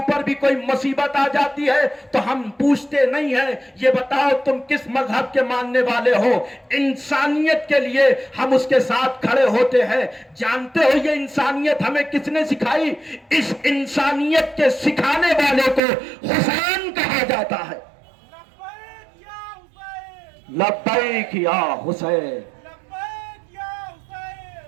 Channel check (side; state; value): left; drops out; at 15.8 s